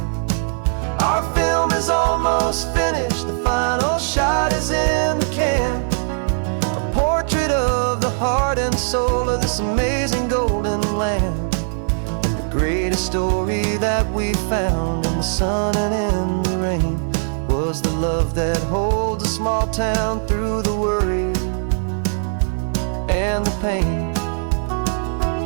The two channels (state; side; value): silent; left; digital silence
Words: Our film is almost finished, the final shot is in the can, a portrait of the heart and soul of this amazing golden land. And the greatest story that we found in the sun and in the rain was the love that holds a small town through the worry and the pain.